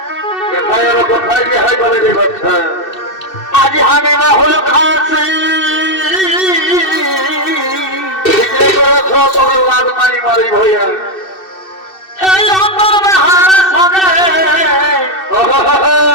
কোথায় গিয়ে হয় বলে রে বাচ্চা আজ আমি রাহুল খাচ্ছি মারি মারি ভইয়া সঙ্গে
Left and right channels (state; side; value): late; right; 2.6 ms